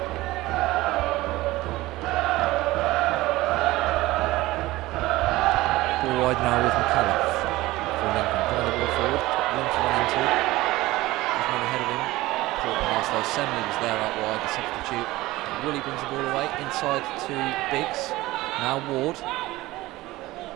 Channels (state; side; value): quieter; left; 18.5 dB